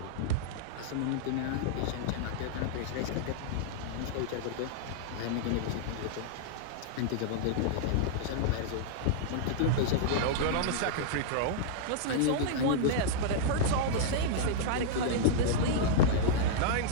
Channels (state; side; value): different; both; correlation -0.02